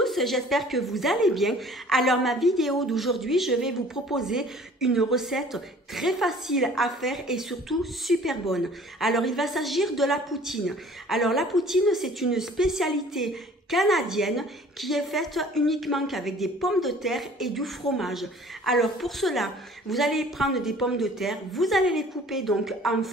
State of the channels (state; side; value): normal; both; correlation 0.50